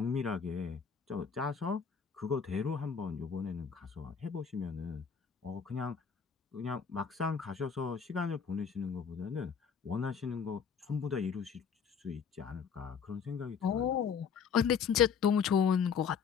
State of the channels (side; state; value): right; quieter; 6.6 dB